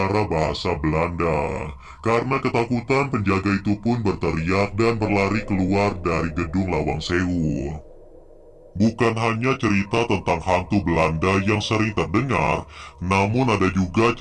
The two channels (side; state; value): both; identical; correlation 1.00